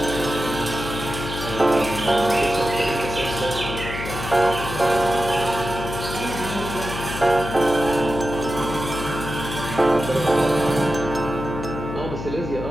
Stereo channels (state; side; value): noise; left; hum, 7 dB below the sound